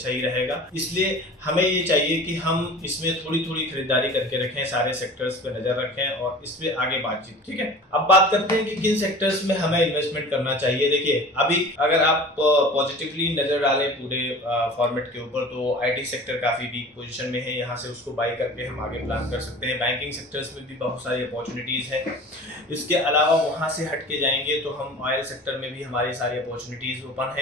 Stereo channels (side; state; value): both; normal; correlation 0.40